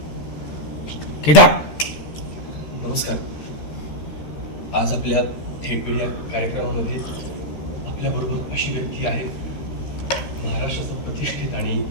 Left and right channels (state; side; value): late; right; 13 ms